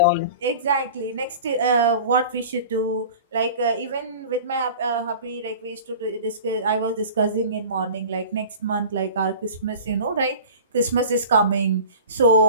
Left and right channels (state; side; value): inverted; both; correlation -0.39